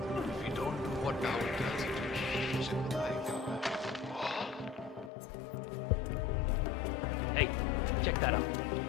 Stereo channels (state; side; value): drops out; right; at 5.1 s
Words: if we don't do what Down tells us to, shit will like Hey, check that out.